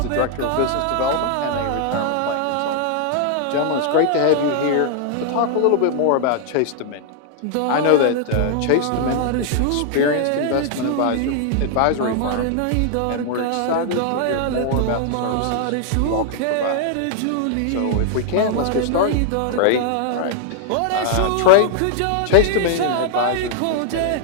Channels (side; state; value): both; different; correlation -0.01